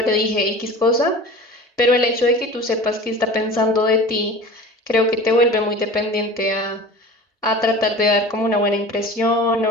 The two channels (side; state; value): both; normal; correlation 0.38